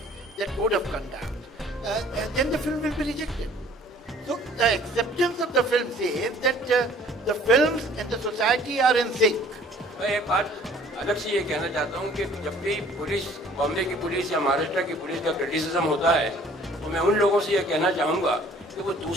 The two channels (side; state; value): both; normal; correlation 0.54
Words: that code of conduct, then the film will be rejected. So the acceptance of the film says that the films and the society are in sync. मैं एक बात अलग से ये कहना चाहता हूँ कि जब भी पुलिस, बॉम्बे की पुलिस या महाराष्ट्र की पुलिस का क्रिटिसिज्म होता है, तो मैं उन लोगों से ये कहना चाहूँगा कि वो